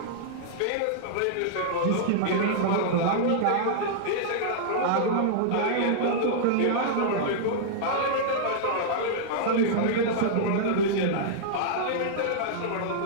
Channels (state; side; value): different; both; correlation -0.01